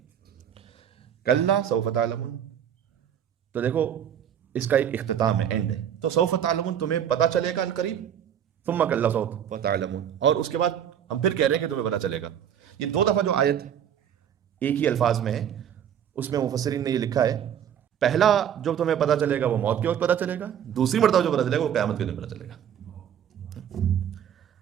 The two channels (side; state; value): left; quieter; 9.3 dB